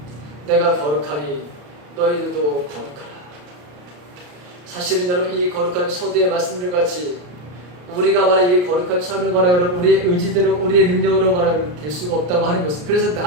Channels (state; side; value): late; left; 33 ms